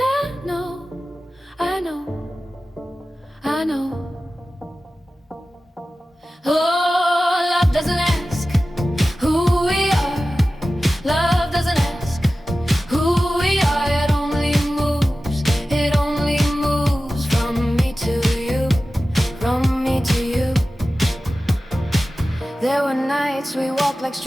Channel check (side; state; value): both; normal; correlation 0.95